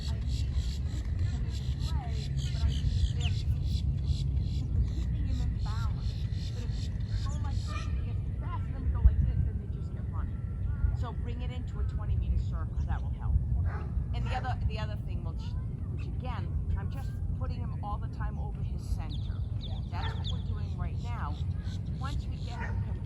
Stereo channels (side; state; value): both; identical; correlation 1.00